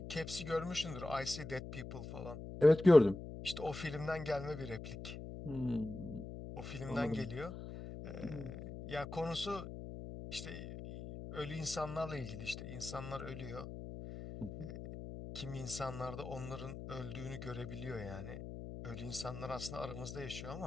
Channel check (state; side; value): noise; left; hum, 9 dB below the sound